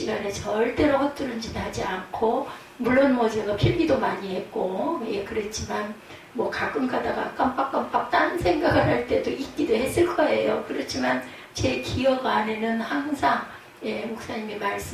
절대로 헛두른 짓 하지 않고, 물론 뭐 제가 필기도 많이 했고, 예, 그랬지만 뭐 가끔 가다가 깜빡깜빡 딴 생각을 할 때도 있기도 했을 거예요. 그렇지만 제 기억 안에는 항상, 예, 목사님이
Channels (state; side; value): identical; both; correlation 1.00